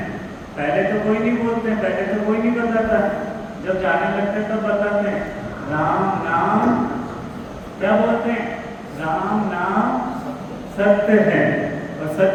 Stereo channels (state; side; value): identical; both; correlation 1.00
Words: पहले तो कोई नहीं बोलते, पहले तो कोई नहीं बताता, जब जाने लगते तब बताते हैं। राम नाम क्या बोलते हैं? राम नाम सत्य है, और